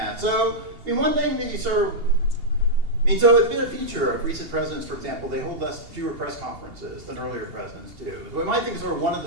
So, I mean, one thing that you sort of, so it's been a feature of recent presidents, for example, they hold fewer press conferences than earlier presidents do. So we might think sort of one of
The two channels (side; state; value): left; late; 2.8 ms